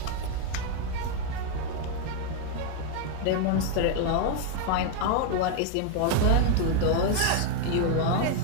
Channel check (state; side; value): different; both; correlation 0.00